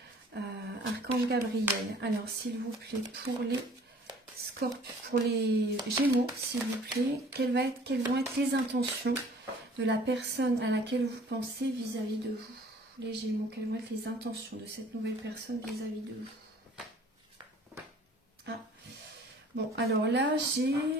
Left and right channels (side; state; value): both; normal; correlation 0.52